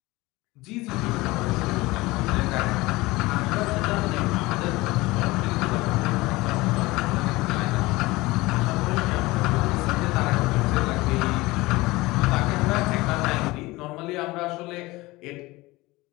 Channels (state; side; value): quieter; right; 20.8 dB